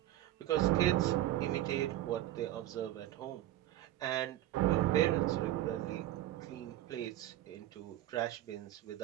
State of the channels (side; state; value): left; quieter; 14.0 dB